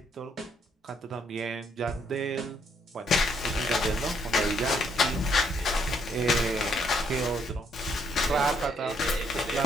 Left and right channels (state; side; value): normal; both; correlation 0.71